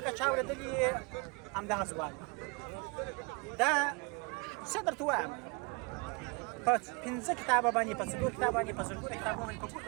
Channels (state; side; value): quieter; left; 30.4 dB